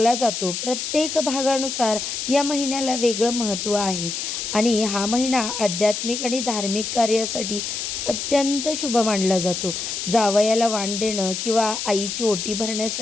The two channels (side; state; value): left; noise; hiss, 4 dB below the sound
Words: जातो. प्रत्येक भागानुसार या महिन्याला वेगळं महत्त्व आहे आणि हा महिना आध्यात्मिक आणि धार्मिक कार्यासाठी अत्यंत शुभ मानला जातो. जावयाला वाण देणं किंवा आईची ओटी